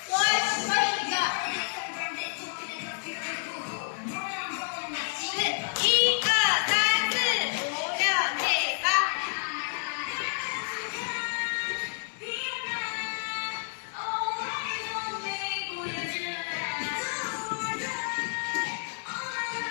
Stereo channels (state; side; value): silent; right; digital silence